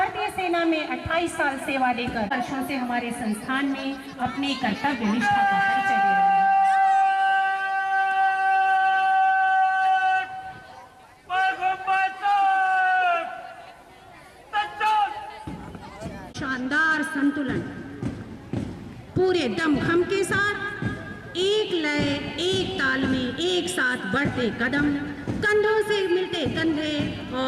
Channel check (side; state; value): both; identical; correlation 1.00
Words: सेना में 28 साल सेवा देकर वर्षों से हमारे संस्थान में अपने कर्तव्य निष्ठा का परिचय दे रहे हैं। शानदार संतुलन, पूरे दमखम के साथ एक लय, एक ताल में एक साथ बढ़ते कदम, कंधों से मिलते कंधे